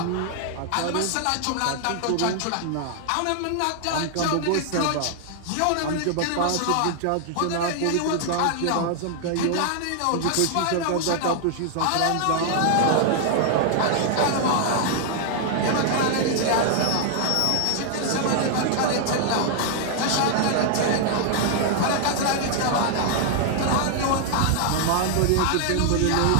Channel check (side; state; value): both; different; correlation 0.00